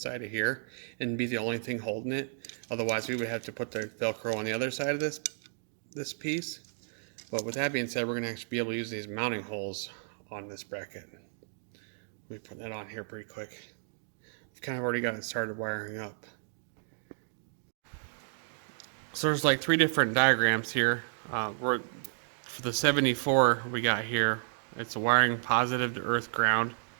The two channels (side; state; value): left; silent; digital silence